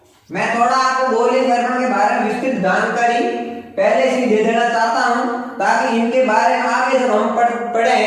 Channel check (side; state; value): both; identical; correlation 1.00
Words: मैं थोड़ा आपको गोलीय दर्पण के बारे में विस्तृत जानकारी पहले से दे देना चाहता हूं, ताकि इनके बारे में आगे जब हम